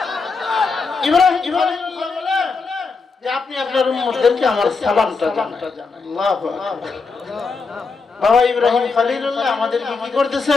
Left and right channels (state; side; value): quieter; right; 4.5 dB